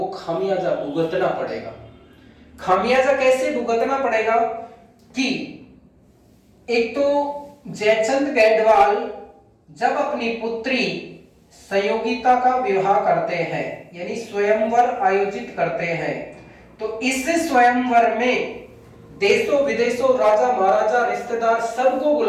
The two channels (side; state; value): both; identical; correlation 1.00